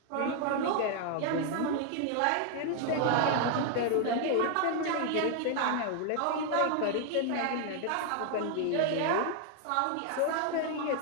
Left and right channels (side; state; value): both; different; correlation 0.00